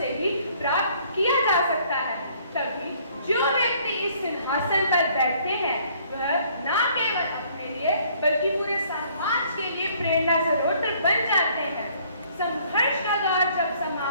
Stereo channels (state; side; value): inverted; both; correlation -0.61